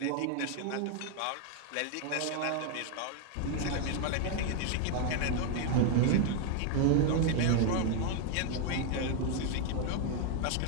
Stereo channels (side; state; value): both; different; correlation 0.00